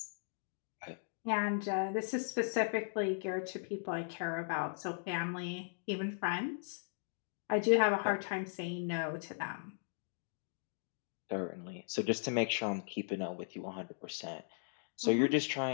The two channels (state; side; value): silent; right; digital silence